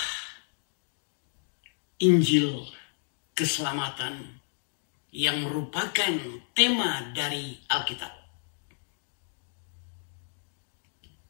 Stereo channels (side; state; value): right; silent; digital silence